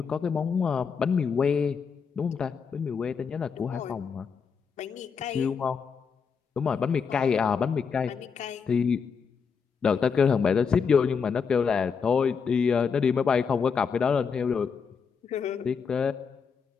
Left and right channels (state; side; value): quieter; right; 6.0 dB